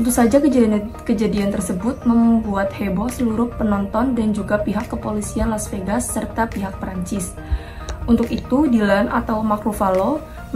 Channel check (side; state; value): both; identical; correlation 1.00